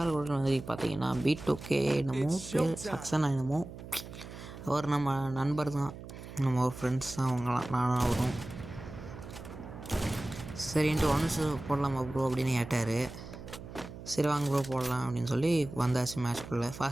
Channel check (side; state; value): right; noise; hum, 13 dB below the sound